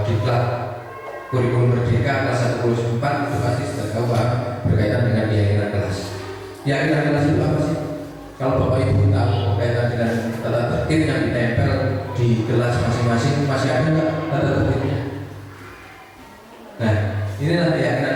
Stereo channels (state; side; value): identical; both; correlation 1.00